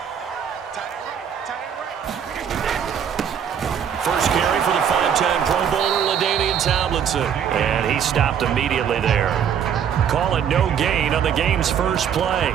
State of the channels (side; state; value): left; quieter; 8.3 dB